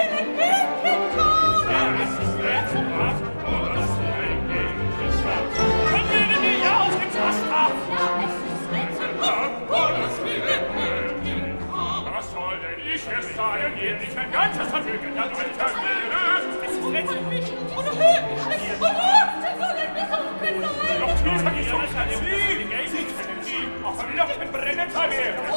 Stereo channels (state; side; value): inverted; both; correlation -1.00